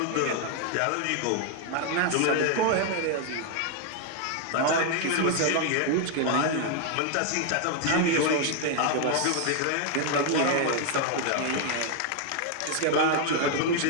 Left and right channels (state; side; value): different; both; correlation 0.00